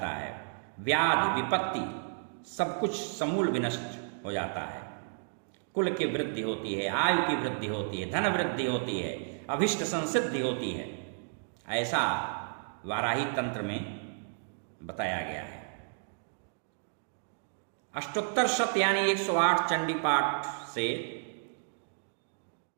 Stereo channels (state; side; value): silent; left; digital silence